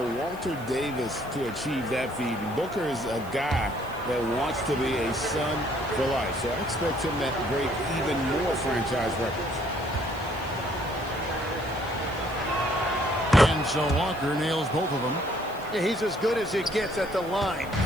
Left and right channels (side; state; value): right; noise; hiss, 22 dB below the sound